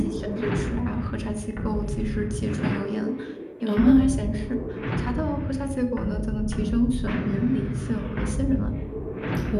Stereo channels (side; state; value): both; identical; correlation 1.00